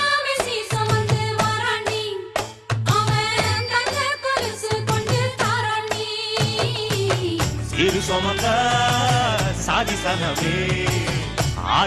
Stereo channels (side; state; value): both; identical; correlation 1.00